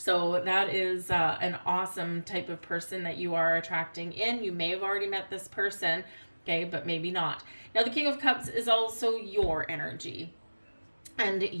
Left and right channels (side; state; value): both; inverted; correlation -1.00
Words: that is an awesome type of person that you are attracting in. You may have already met this person, okay, but maybe not. Now, the King of Cups is also your energy, and